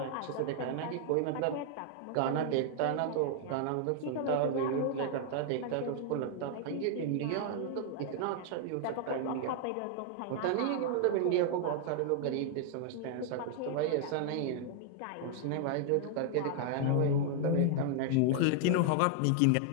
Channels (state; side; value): different; both; correlation 0.00